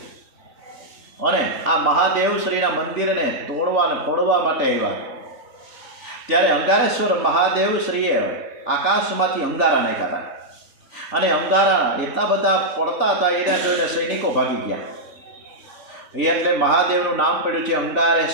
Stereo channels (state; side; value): late; left; 3.4 ms